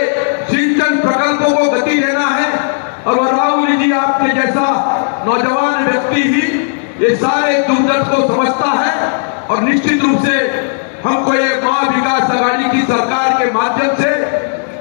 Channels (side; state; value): right; silent; digital silence